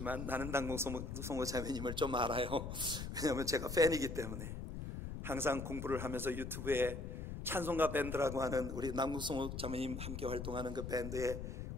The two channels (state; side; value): noise; left; rumble, 6 dB below the sound